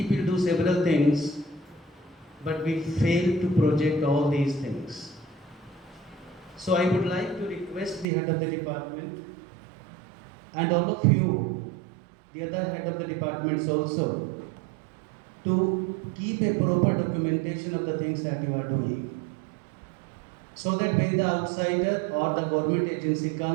do several things, but we fail to project all these things. So I would like to request the head of the department and all of you, the other head of the departments also, to keep a proper documentation of the things that you are doing. So that when the outsider or the government agency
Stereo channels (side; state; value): left; drops out; at 8.1 s